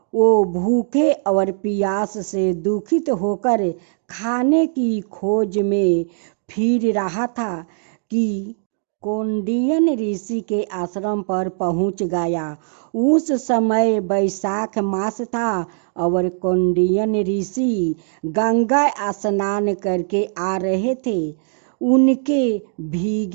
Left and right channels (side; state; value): left; silent; 65 dB below the other